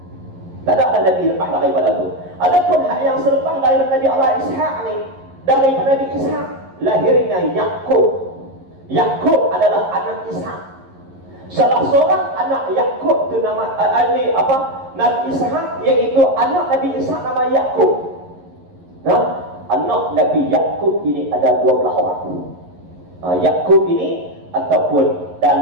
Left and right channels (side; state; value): left; late; 11 ms